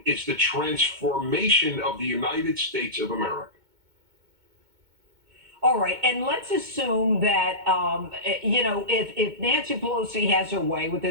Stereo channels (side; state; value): left; late; 2.2 ms